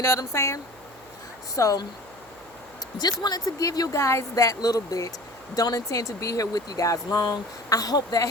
know what I'm saying? So just wanted to give you guys that little bit. Don't intend to be here with you guys long. I hope that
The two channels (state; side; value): noise; right; hum, 26 dB below the sound